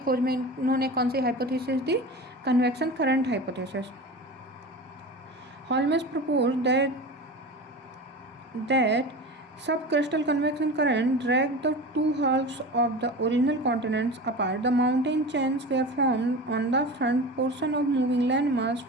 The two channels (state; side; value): normal; both; correlation 0.31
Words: में उन्होंने कौन सी हाइपोथेसिस दी, convection current hypothesis. Holmes proposed that subcrustal convection current dragged the two halves of the original continents apart. The mountain chains were formed on the front portion of moving landmass